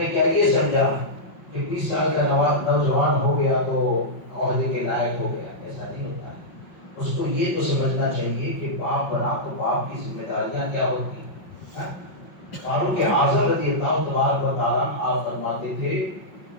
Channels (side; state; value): right; late; 5.5 ms